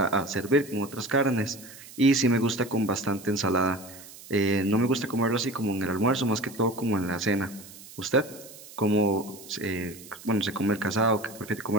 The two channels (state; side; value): noise; right; hiss, 18 dB below the sound